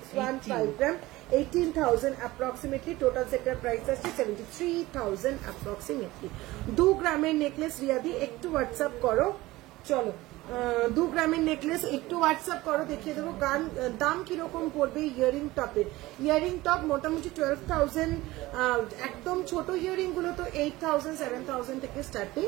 গ্রাম, 18,000 approximately. Total sector price আসছে 73,000 approximately. 2 গ্রামের নেকলেস রিয়াদি, একটু হোয়াটসঅ্যাপ করো। চলো 2 গ্রামের নেকলেস একটু হোয়াটসঅ্যাপ করো, দেখিয়ে দেবো দাম কিরকম পড়বে। ইয়ারিং টপে, ইয়ারিং টপ মোটামুটি 12,000, একদম ছোট ইয়ারিং গুলো তো 8,000 7,000 থেকে স্টার্টিং,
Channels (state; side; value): quieter; left; 18.8 dB